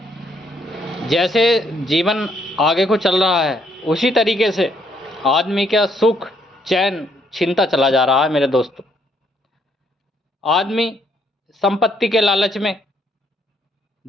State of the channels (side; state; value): both; normal; correlation 0.70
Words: जैसे जीवन आगे को चल रहा है, उसी तरीके से आदमी का सुख चैन छीनता चला जा रहा है मेरे दोस्तों। आदमी संपत्ति के लालच में,